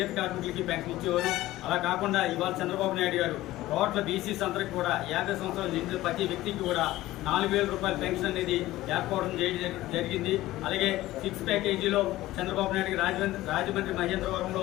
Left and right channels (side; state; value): right; quieter; 16.5 dB